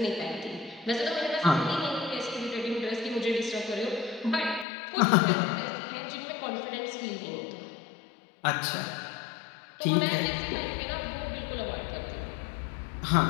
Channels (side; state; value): right; drops out; at 4.7 s